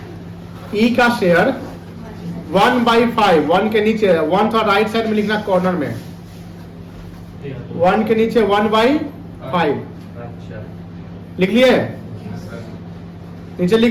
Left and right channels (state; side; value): identical; both; correlation 1.00